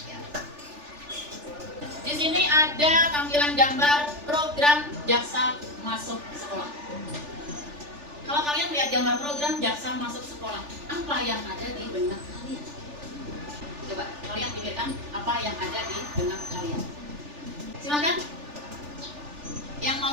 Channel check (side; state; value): left; late; 3.4 ms